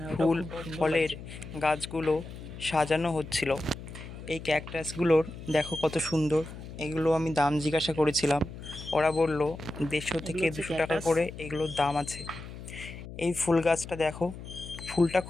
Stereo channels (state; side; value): noise; left; hum, 12 dB below the sound